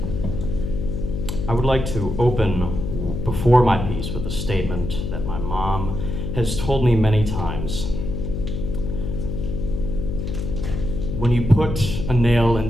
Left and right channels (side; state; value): left; noise; hum, 4 dB below the sound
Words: I would like to open before my piece with a statement that my mom has told me many times. When you put a nail